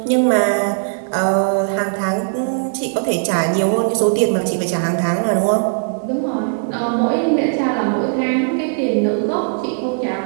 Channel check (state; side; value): silent; left; digital silence